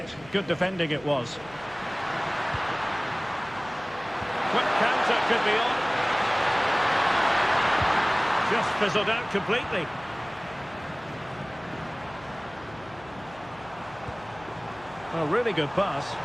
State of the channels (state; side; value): noise; left; hum, 22 dB below the sound